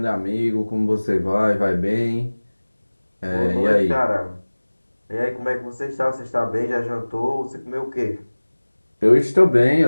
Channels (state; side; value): inverted; both; correlation -1.00